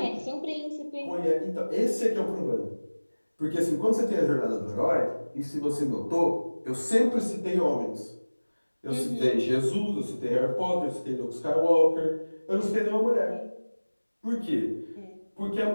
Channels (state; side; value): inverted; both; correlation -1.00